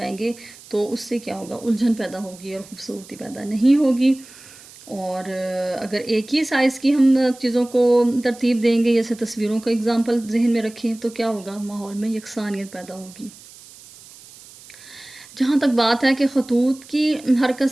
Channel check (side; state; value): right; noise; hiss, 21 dB below the sound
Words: گے، تو اس سے کیا ہوگا، الجھن پیدا ہوگی اور خوبصورتی پیدا نہیں ہوگی. اور اگر ایک ہی سائز کی ہم چیزوں کو ترتیب دیں گے، جیسے تصویروں کا اگزامپل ذہن میں رکھیں، تو کیا ہوگا، ماحول میں یکسانیت پیدا ہوگی. جہاں تک بات ہے کہ خطوط کی حرکت